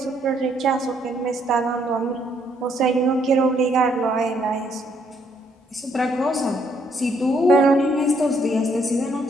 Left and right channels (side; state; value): both; normal; correlation 0.70